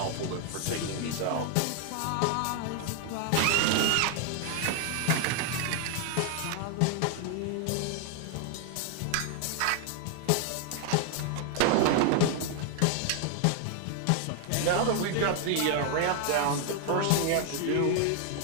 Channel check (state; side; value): different; both; correlation 0.00